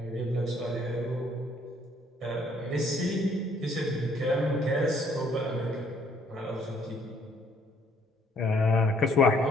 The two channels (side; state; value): both; normal; correlation 0.64